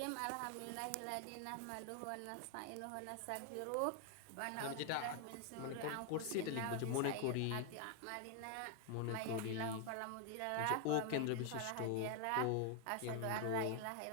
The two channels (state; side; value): different; both; correlation 0.00